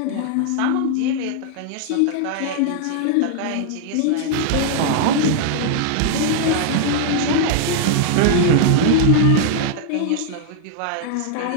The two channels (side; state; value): both; different; correlation 0.00